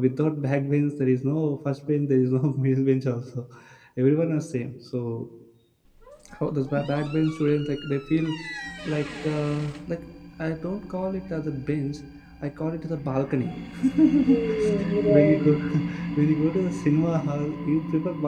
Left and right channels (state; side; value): identical; both; correlation 1.00